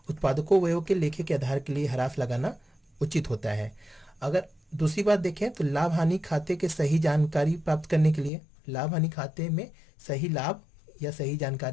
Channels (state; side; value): drops out; right; at 8.3 s